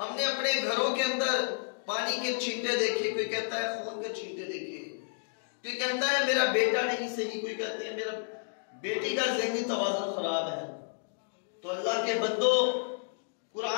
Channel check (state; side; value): silent; right; digital silence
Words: نے اپنے گھروں کے اندر پانی کے چھینٹے دیکھے، کوئی کہتا ہے خون کے چھینٹے دیکھے، کوئی کہتا ہے میرا بیٹا نہیں صحیح، کوئی کہتا ہے میرا بیٹی کا ذہنی توازن خراب ہے۔ تو اللہ کے بندو،